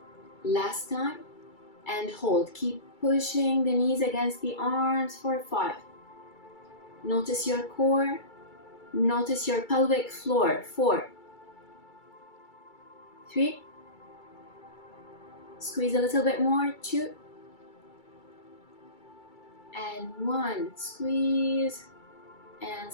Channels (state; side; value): late; right; 2.3 ms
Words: Last time. And hold. Keep pushing the knees against the arms for 5. Notice your core. Notice your pelvic floor. 4. 3. Squeeze a little bit more. 2. And 1. Squeeze. And